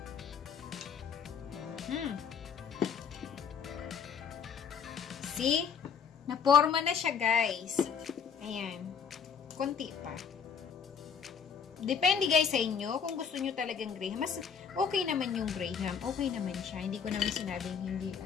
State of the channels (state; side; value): quieter; right; 6.8 dB